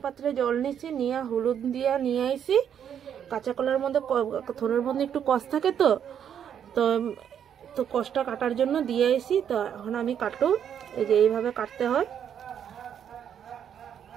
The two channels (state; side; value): quieter; left; 8.8 dB